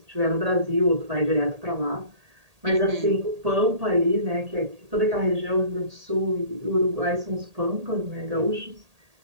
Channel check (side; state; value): left; late; 1.8 ms